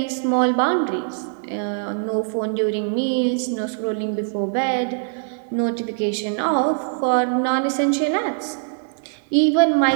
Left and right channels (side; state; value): left; silent; 63 dB below the other